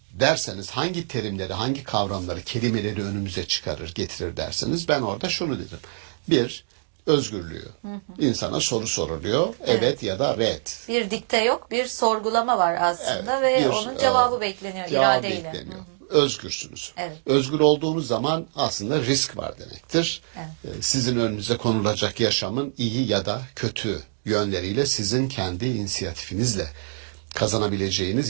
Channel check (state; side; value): silent; left; digital silence